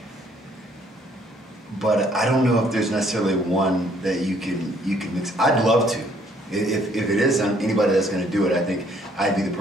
but I don't know if there's necessarily one that you can mix. I'd love to. If it is anybody that's going to do it, I think I'd be the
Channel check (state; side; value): normal; both; correlation 0.64